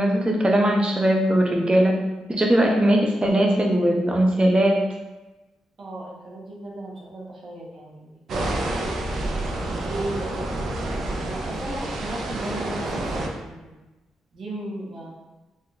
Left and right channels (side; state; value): both; normal; correlation 0.88